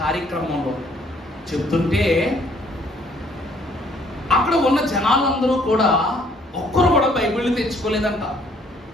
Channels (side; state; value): both; normal; correlation 0.62